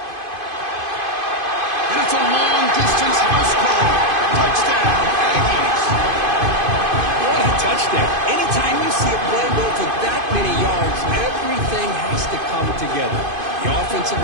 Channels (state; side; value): late; left; 2.5 ms